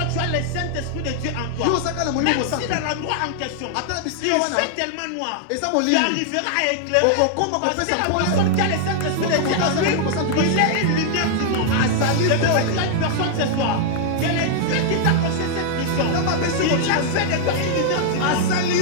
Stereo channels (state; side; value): different; both; correlation -0.01